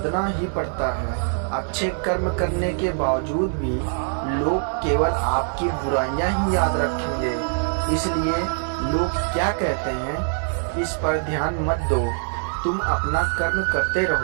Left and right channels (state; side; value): silent; left; 63 dB below the other